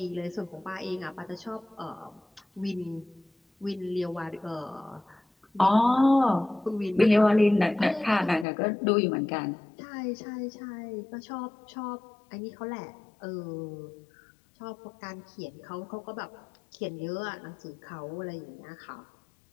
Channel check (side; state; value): right; drops out; at 8.5 s